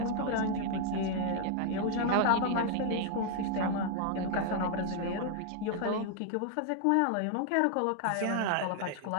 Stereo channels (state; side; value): different; both; correlation 0.00